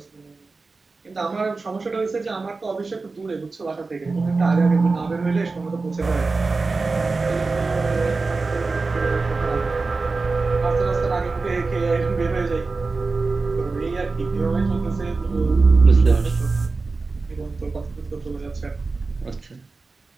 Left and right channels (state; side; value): quieter; left; 3.9 dB